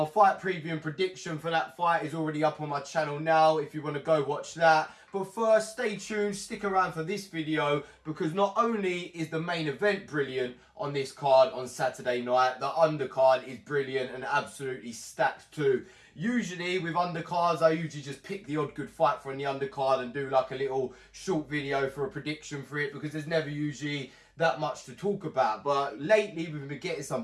fight preview and prediction for that fight is already up on my channel now if you want to go watch that. But first, stay tuned, stick around for this video, because not only is the main event brilliant on this card on Saturday night, the undercard is brilliant and absolutely stacked too. Usually with undercards, I usually just pick the odd good fight from the undercard and do like a little short video for a prediction for it, because there's never usually that much to talk about. But lately we've been getting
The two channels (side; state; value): both; identical; correlation 1.00